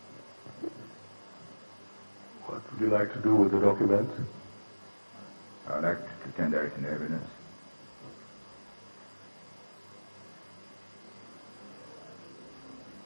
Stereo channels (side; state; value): both; inverted; correlation -1.00